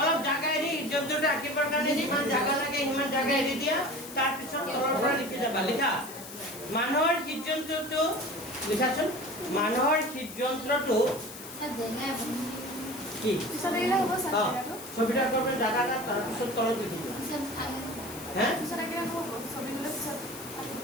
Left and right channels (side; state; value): left; noise; hiss, 13 dB below the sound